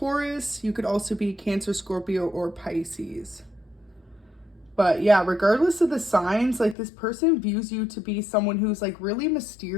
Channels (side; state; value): right; drops out; at 6.8 s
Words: You could also be Cancer, Scorpio, or Pisces. But yeah, regardless of the signs, like this person views you to be someone who's like really